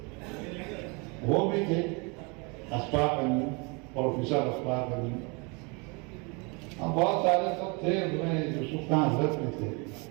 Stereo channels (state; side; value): quieter; left; 31.0 dB